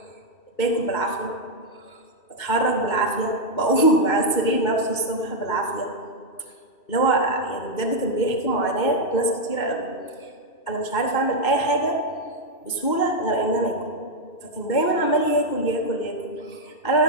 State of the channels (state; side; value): late; right; 2.6 ms